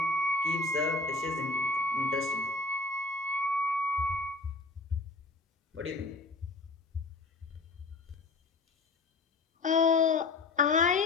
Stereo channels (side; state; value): right; quieter; 3.4 dB